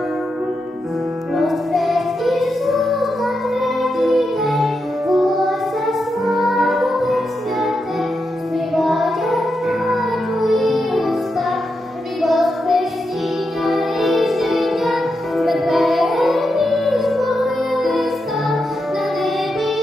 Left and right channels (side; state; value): both; normal; correlation 0.86